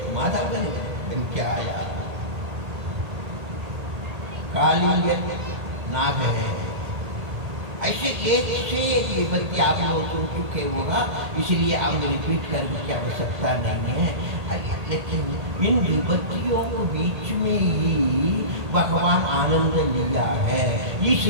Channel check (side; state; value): left; late; 1.8 ms